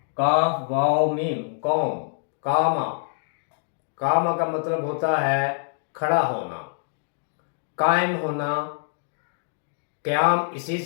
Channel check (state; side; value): silent; right; digital silence